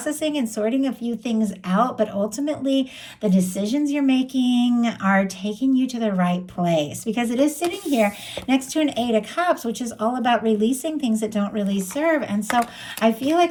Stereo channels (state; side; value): identical; both; correlation 1.00